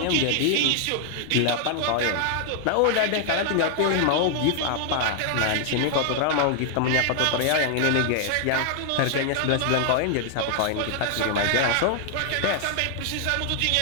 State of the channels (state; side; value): different; both; correlation 0.00